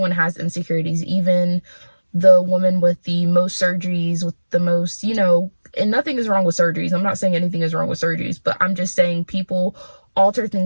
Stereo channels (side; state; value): both; inverted; correlation -1.00